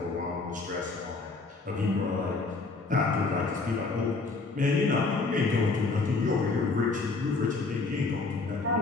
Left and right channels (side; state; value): right; quieter; 3.8 dB